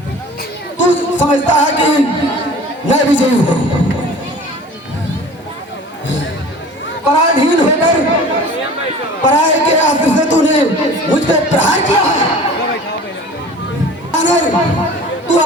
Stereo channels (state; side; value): normal; both; correlation 0.43